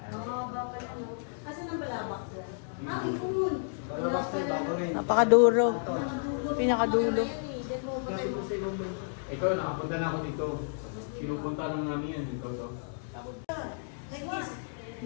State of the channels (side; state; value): right; silent; digital silence